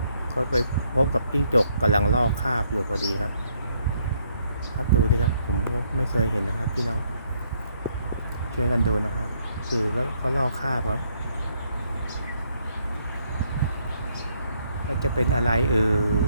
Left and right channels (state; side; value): inverted; both; correlation -0.71